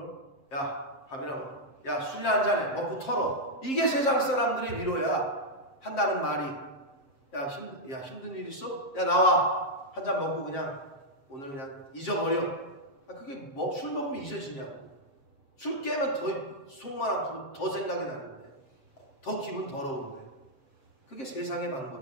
야 밥이나 먹어. 야 술이나 한잔해. 먹고 털어. 이게 세상 사람들의 위로야. 한다는 말이. 야 힘든 일 있어? 야 나와. 한 잔 먹고 그냥 오늘 그냥 잊어버려. 그게 술 먹으면 잊어지냐고. 술 깨면 더 속만 아프고 더 생각이 나는데 더 기분 더러운데 그게 세상의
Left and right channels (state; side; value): late; right; 7.5 ms